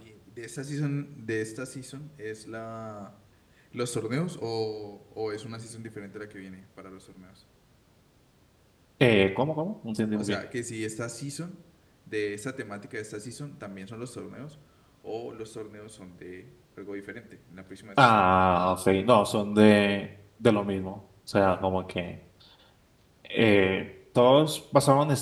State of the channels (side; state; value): both; identical; correlation 1.00